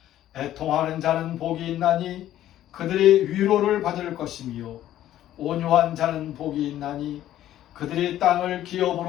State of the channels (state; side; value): quieter; right; 12.7 dB